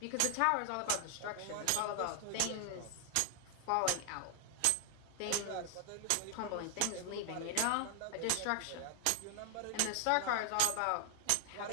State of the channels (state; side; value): different; both; correlation 0.00